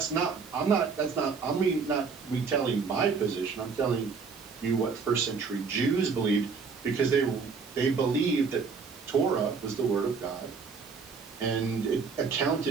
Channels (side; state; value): left; quieter; 5.2 dB